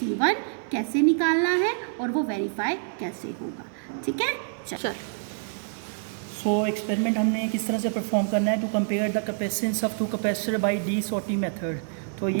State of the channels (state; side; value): silent; left; 55 dB below the other